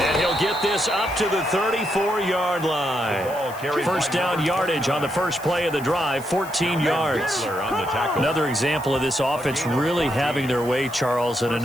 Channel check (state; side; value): noise; left; hiss, 18 dB below the sound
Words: he'll get this up to the 34-yard line. 1st down yardage on the first play of the drive, 14 yards. Another example of this offense really having their way, Charles, and